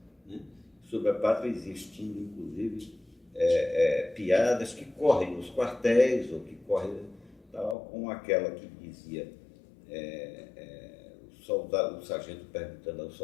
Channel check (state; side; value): drops out; right; at 7.8 s